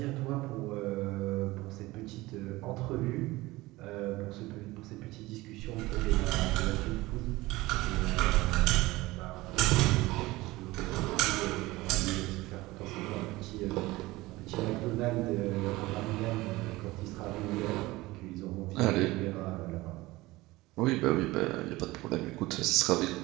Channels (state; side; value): quieter; left; 19.7 dB